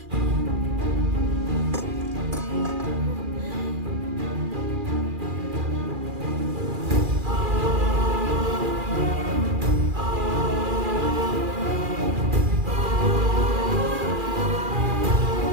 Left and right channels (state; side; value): late; left; 2.4 ms